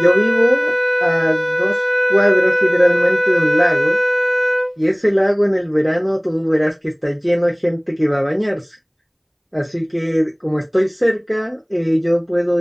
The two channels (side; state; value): both; identical; correlation 1.00